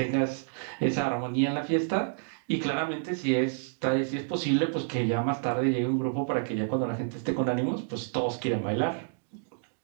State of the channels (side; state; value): left; silent; digital silence